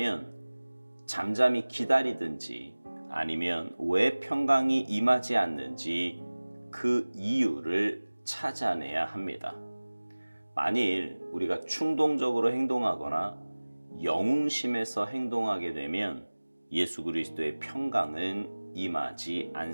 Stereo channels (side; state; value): both; inverted; correlation -1.00